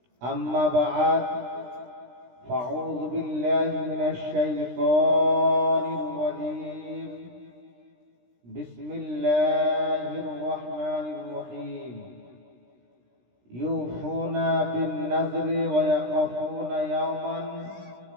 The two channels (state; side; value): late; left; 16 ms